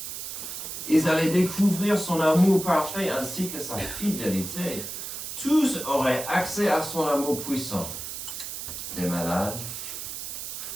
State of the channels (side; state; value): right; noise; hiss, 7 dB below the sound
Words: Ils allaient découvrir son amour parfait ainsi que sa fidélité. Tous auraient accès à son amour puissant. Des malades,